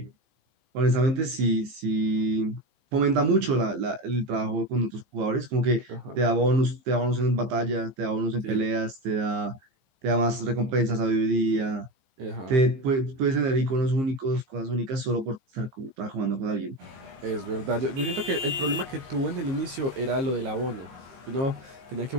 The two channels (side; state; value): left; late; 15 ms